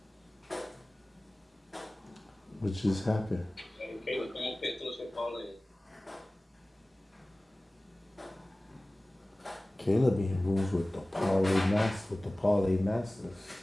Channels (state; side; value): normal; both; correlation 0.98